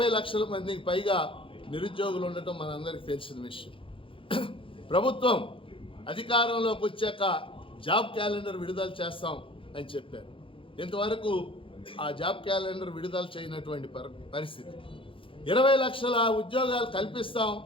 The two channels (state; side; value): late; right; 0.25 ms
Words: లక్షల మందికి పైగా నిరుద్యోగులు ఉండటం మనందరికీ తెలిసిన విషయం. ప్రభుత్వం అధికారంలోకి వచ్చాక జాబ్ క్యాలెండర్ విడుదల చేస్తాం అని చెప్పారు. ఇంతవరకు ఆ జాబ్ క్యాలెండర్ విడుదల చేయనటువంటి పరిస్థితి. 20 లక్షల ఉద్యోగాలు కల్పిస్తాం,